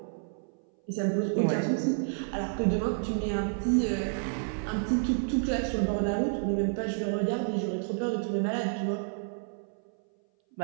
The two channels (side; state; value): left; silent; 58 dB below the other